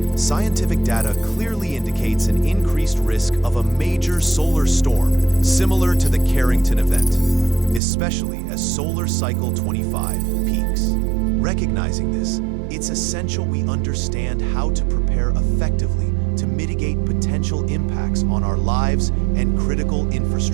Scientific data clearly indicates an increased risk of a major solar storm similar to the Carrington Event, especially as Solar Cycle 25 peaks. Recognizing this, it's essential we understand how to prepare effectively to mitigate potential impacts on our lives and critical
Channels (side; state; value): left; drops out; at 7.8 s